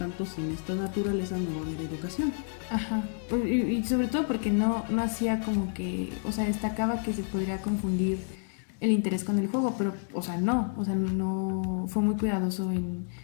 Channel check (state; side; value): silent; right; 58 dB below the other